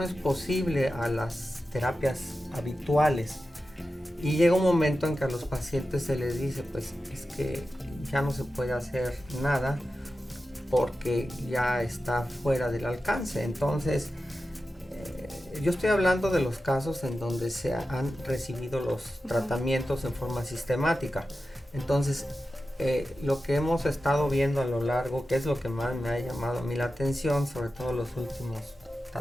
es posible a las terapias habituales y llega un momento en que a los pacientes se les dice, pues es que ya no se puede hacer nada porque ya está fuera del alcance. Entonces yo estoy hablando de los casos en donde se han recibido los tratamientos en forma sistemática. Entonces lo que hemos estado viendo a lo largo, que es lo que más me ha llamado a mí la atención, sobre todo los últimos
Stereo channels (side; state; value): both; normal; correlation 0.92